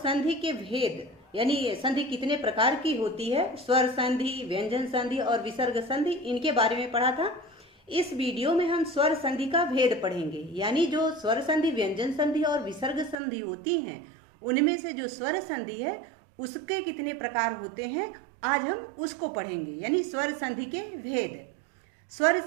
के भेद यानी संधि कितने प्रकार की होती है, स्वर संधि, व्यंजन संधि और विसर्ग संधि, इनके बारे में पढ़ा था। इस वीडियो में हम स्वर संधि का भेद पढ़ेंगे, यानी जो स्वर संधि, व्यंजन संधि और विसर्ग संधि होती हैं, उनमें से जो स्वर संधि है उसके कितने प्रकार होते हैं, आज हम उसको पढ़ेंगे, यानी स्वर संधि के भेद। स्वर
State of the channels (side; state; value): left; drops out; at 13.2 s